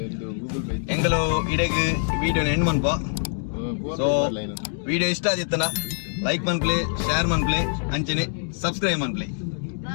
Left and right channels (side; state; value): right; silent; digital silence